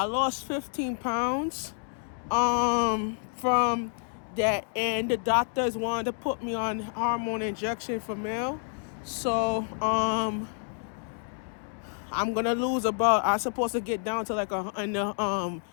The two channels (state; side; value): silent; right; 59 dB below the other